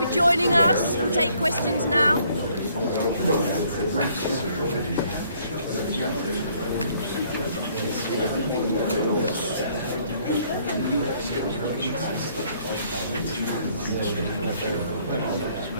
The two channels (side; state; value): both; inverted; correlation -0.64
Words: joining us. We'll take questions now.